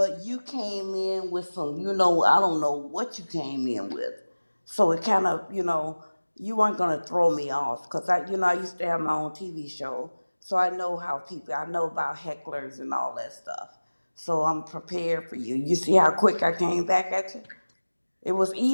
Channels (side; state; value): both; inverted; correlation -1.00